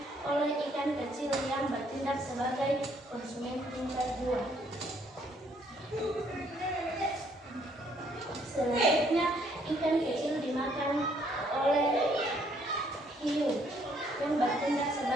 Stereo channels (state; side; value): normal; both; correlation 0.67